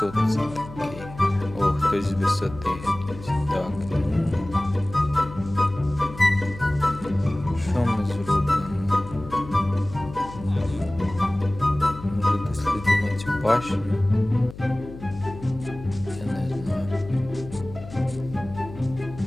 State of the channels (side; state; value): left; noise; hum, 15 dB below the sound